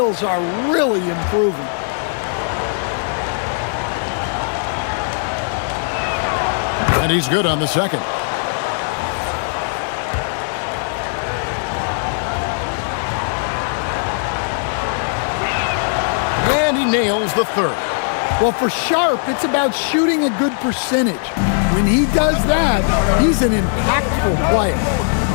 are really improving. And he's good on the second. And he nails the 3rd. Well, for Sharp, it's about shooting a good percentage. When he does that, he's an impactful player.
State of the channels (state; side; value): silent; right; digital silence